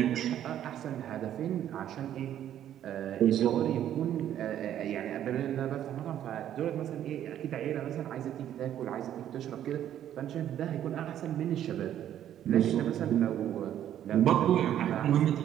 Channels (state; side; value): quieter; left; 11.0 dB